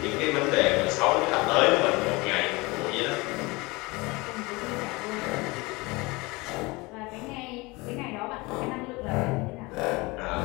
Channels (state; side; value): quieter; right; 24.1 dB